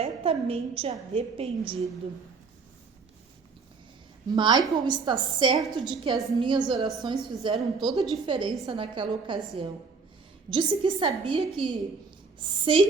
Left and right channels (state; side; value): quieter; left; 4.7 dB